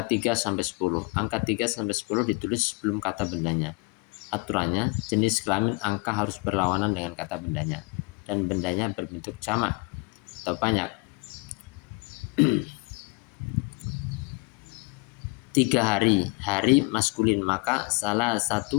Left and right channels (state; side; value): quieter; right; 29.2 dB